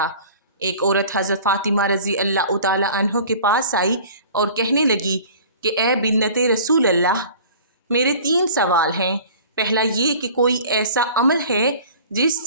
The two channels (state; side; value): inverted; both; correlation -0.45